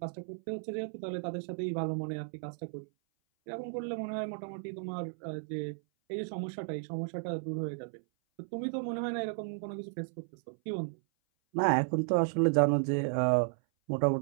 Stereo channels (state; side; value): silent; left; 55 dB below the other